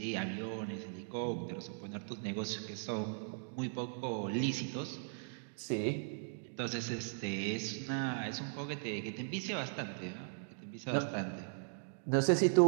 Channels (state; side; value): silent; left; digital silence